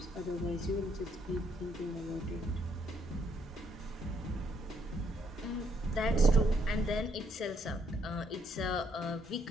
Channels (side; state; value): both; normal; correlation 0.71